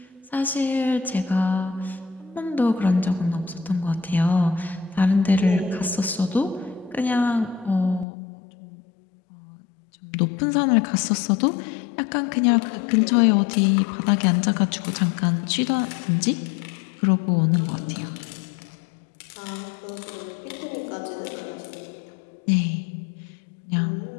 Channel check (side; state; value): right; drops out; at 8.1 s